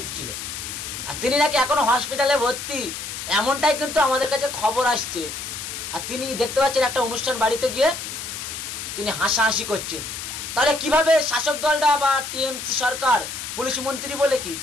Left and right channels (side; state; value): left; noise; hiss, 7 dB below the sound